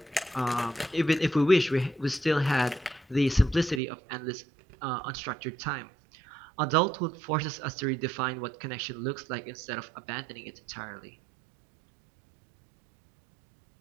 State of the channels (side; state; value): left; drops out; at 3.8 s